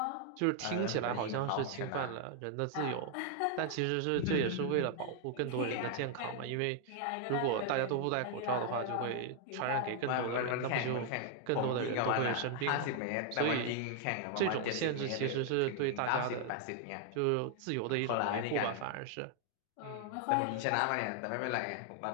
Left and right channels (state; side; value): different; both; correlation 0.00